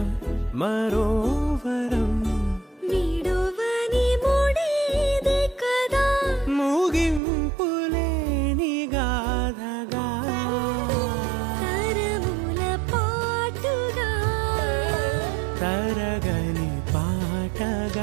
మరోవరం విడువని ముడిది కదా ముగింపులేని గాథగా తరముల పాటుగా తరగని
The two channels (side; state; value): left; drops out; at 7.2 s